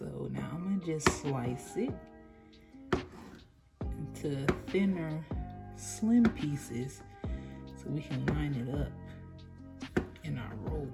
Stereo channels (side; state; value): both; identical; correlation 1.00